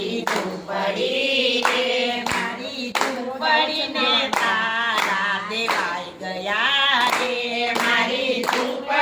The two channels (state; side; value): identical; both; correlation 1.00